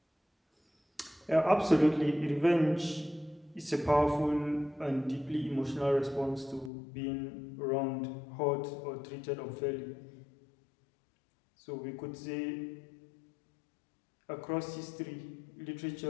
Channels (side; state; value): right; drops out; at 6.7 s